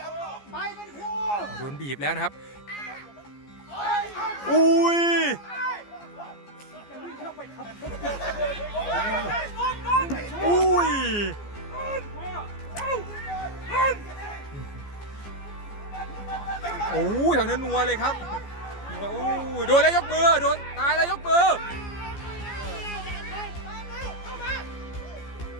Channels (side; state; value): right; late; 14 ms